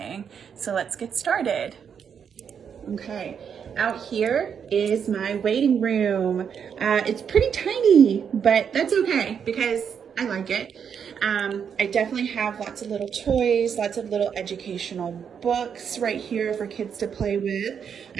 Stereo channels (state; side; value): quieter; left; 7.4 dB